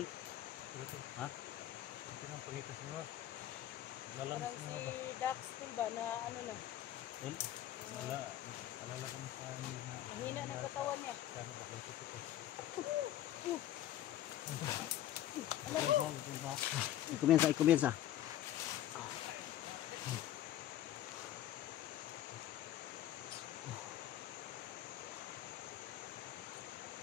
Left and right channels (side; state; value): right; quieter; 12.7 dB